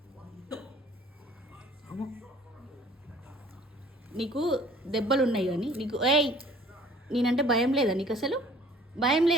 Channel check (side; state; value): both; normal; correlation 0.53